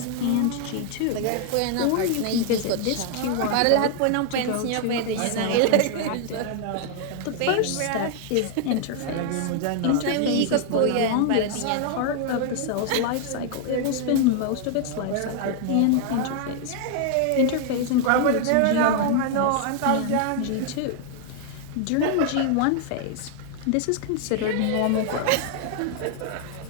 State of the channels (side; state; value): both; different; correlation 0.00